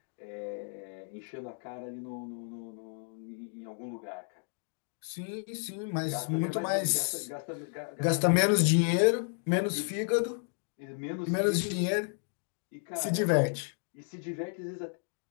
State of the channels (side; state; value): right; silent; 56 dB below the other